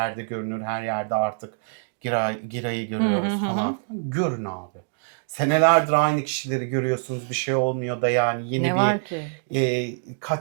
görünür, her yerde artık Giray'ı görüyoruz falan filan. Görün abi. Senelerdir aynı kişileri görüyorsunuz, bir şey olmuyor da yani yeni Ne bir var ki?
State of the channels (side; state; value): left; silent; digital silence